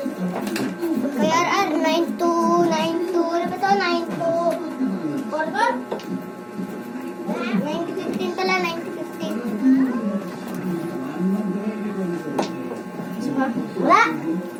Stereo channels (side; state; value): both; identical; correlation 1.00